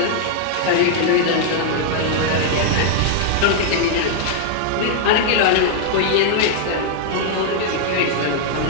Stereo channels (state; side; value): different; both; correlation 0.00